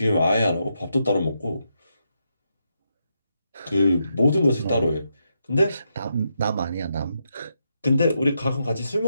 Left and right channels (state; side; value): inverted; both; correlation -0.82